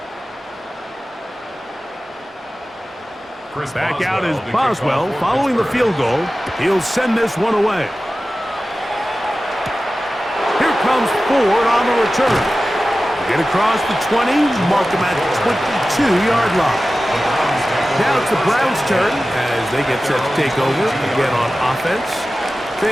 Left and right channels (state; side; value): normal; both; correlation 0.95